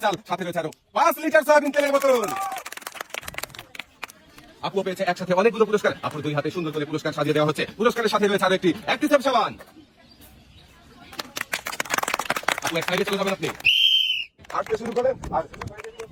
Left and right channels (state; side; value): identical; both; correlation 1.00